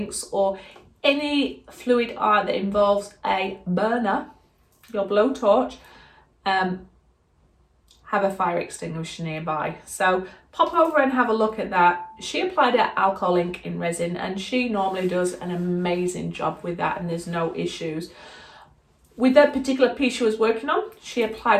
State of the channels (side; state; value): both; identical; correlation 1.00